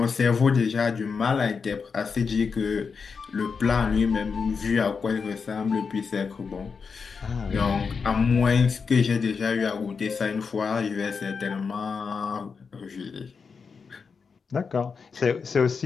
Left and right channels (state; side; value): quieter; right; 5.4 dB